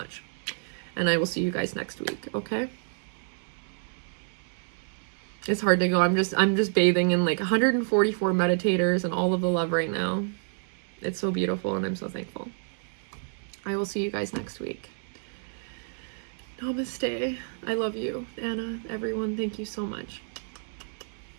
And I will see you guys next week, okay? It's hard to go. I'm just bathing in like 144 meditators and all of the love right now. It's so beautiful and I'm so thankful. I will see you guys next week. Namaste. I love you, Anna, everyone. Thank you so much.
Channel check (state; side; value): silent; left; digital silence